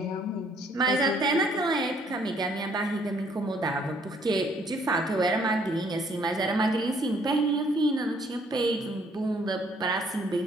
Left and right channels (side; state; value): both; normal; correlation 0.64